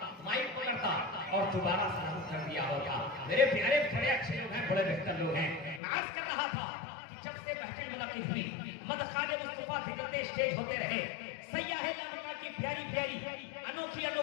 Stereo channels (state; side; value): drops out; right; at 5.8 s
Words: माइक पकड़ता और दोबारा सलाम कर दिया होता। मेरे प्यारे बड़े अच्छे लोग हैं, बड़े बेहतर लोग हैं। मैं आज कर रहा था कि जब से महफिल मुलाकात हुई मदखाने मुस्तफा फिरते स्टेज होते रहे, सैयाहे लामिका की प्यारी प्यारी अनोखी